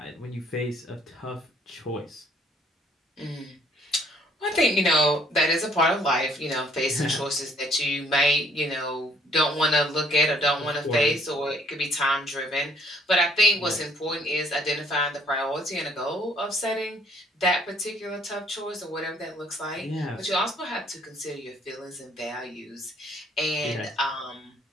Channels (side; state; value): both; normal; correlation 0.63